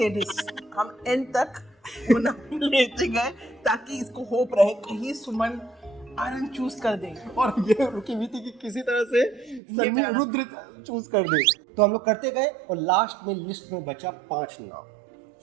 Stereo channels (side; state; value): left; drops out; at 9.6 s